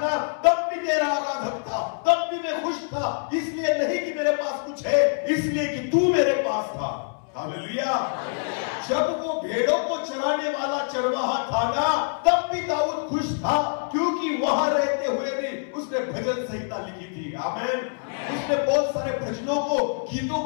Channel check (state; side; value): silent; right; 62 dB below the other